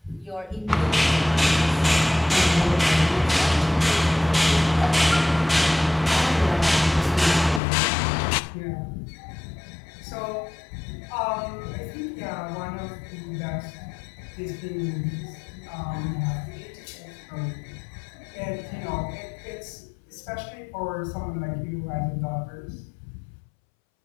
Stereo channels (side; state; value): right; drops out; at 7.6 s